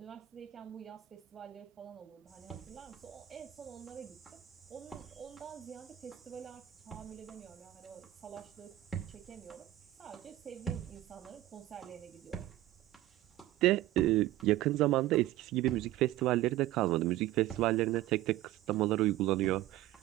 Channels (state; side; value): quieter; left; 15.2 dB